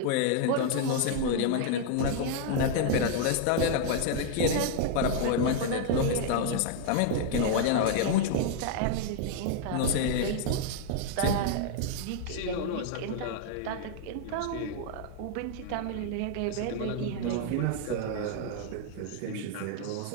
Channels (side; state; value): both; different; correlation 0.00